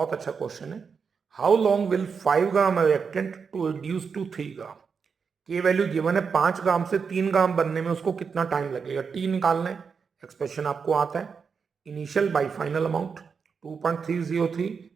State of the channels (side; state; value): left; quieter; 5.8 dB